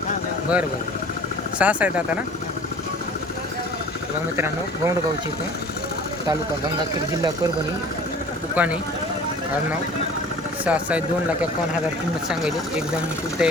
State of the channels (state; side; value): normal; both; correlation 0.46